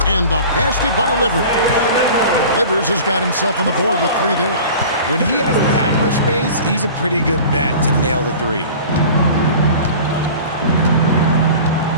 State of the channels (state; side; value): inverted; both; correlation -0.40